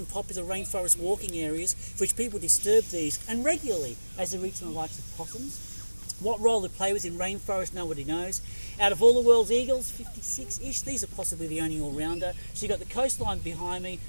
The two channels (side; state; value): both; inverted; correlation -1.00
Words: popular rainforest walking areas for which people disturb these, and regularly as they reach the likes of possums. What role they play within rainforest, nobody knows. Out of all the world's eagles, 56-ish, these are possibly the only all-rounder. So you've got the coastline behind me,